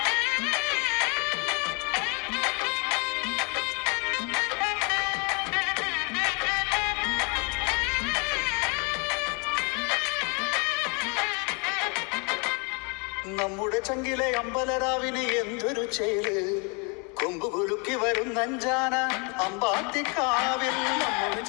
നമ്മുടെ ചങ്കിലെ അമ്പലരാവിന് എന്തൊരു ചേല് കൊമ്പ് കുലുക്കി വരുന്നഞ്ചാന അമ്പാത്തിക്കാവിൽ. നമ്മുടെ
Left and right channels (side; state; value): right; quieter; 33.3 dB